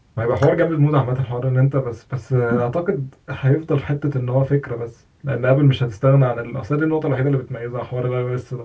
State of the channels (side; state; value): both; identical; correlation 1.00